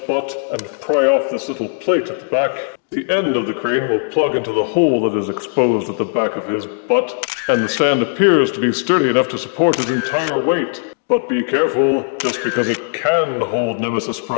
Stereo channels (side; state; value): right; silent; digital silence